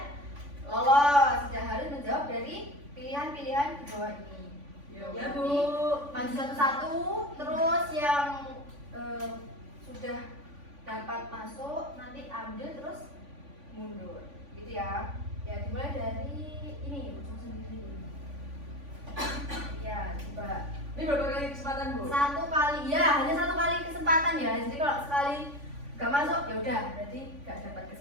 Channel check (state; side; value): late; left; 3.5 ms